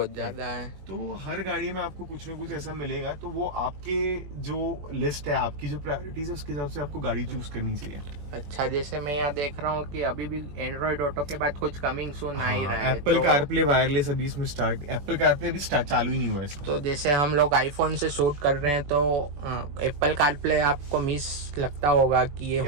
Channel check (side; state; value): left; late; 21 ms